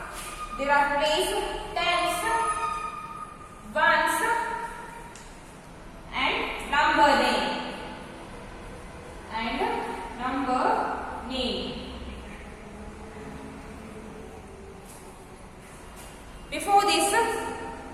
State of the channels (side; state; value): both; identical; correlation 1.00